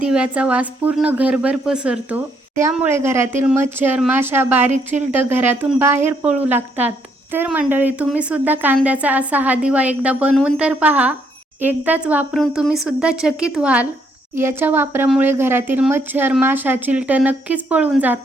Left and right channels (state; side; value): normal; both; correlation 0.71